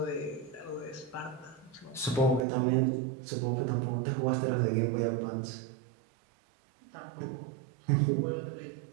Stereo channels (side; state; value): left; drops out; at 2.5 s